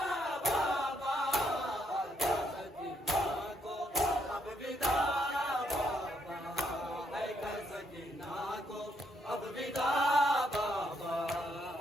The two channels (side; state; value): both; normal; correlation 0.73